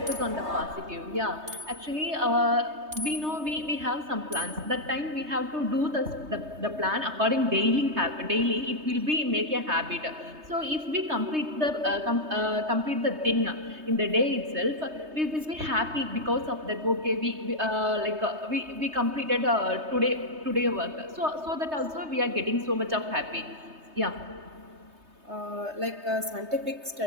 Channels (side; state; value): left; late; 3.2 ms